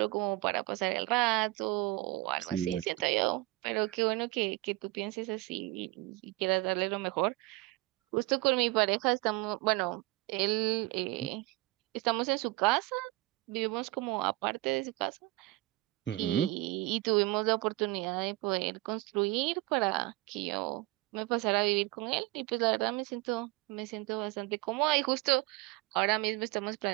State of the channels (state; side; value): quieter; left; 19.9 dB